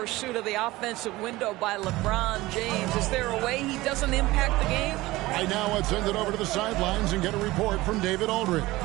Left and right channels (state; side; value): quieter; left; 19.1 dB